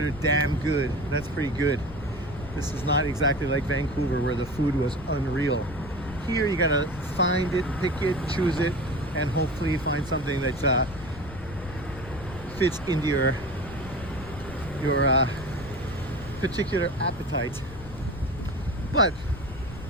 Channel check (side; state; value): left; noise; rumble, 14 dB below the sound